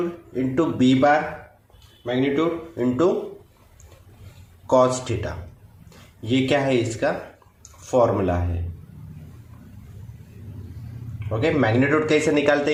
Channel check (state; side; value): identical; both; correlation 1.00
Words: into B bar magnitude into cos theta. ये क्या है, इसका फॉर्मूला है। ओके, मैग्नीट्यूड कैसे निकालते